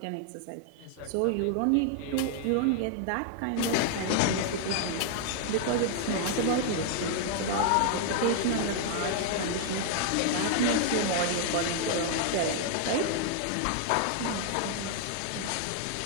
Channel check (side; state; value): both; different; correlation 0.00